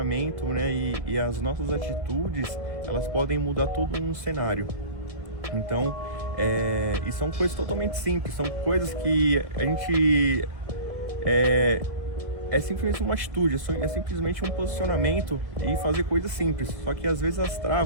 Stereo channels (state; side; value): late; left; 1.7 ms